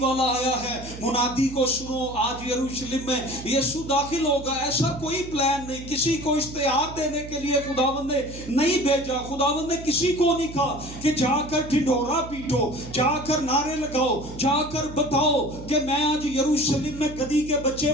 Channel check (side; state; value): right; noise; hum, 13 dB below the sound